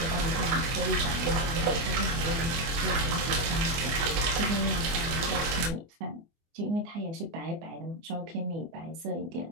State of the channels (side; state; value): left; late; 24 ms